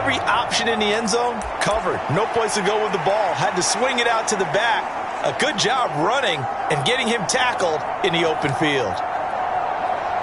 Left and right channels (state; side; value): identical; both; correlation 1.00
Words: option in the end zone covered. No place to go with the ball. Had to swing it out to the back. A good job running and getting him tackled in the open field.